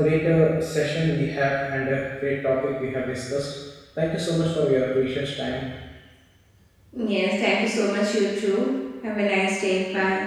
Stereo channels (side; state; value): both; identical; correlation 1.00